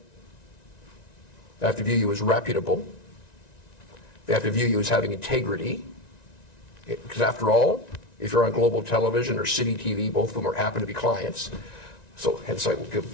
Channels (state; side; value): late; right; 1.9 ms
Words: They have to view you as reputable. They have to view you as having integrity. Because after all, if you're on global television or city TV, both of them happen to be clients. So hence I will